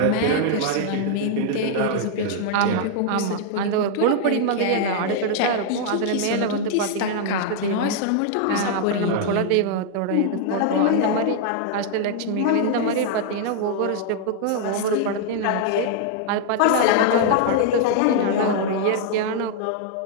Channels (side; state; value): both; different; correlation 0.00